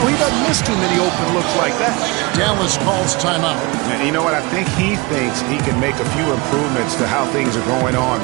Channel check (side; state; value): left; quieter; 25.6 dB